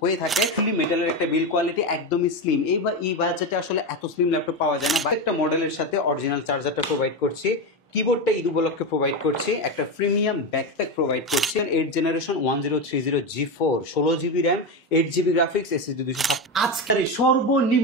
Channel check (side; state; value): both; normal; correlation 0.15